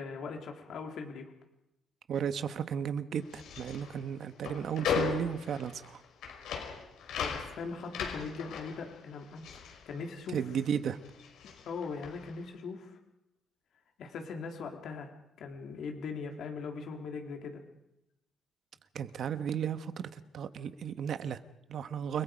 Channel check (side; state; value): both; normal; correlation 0.63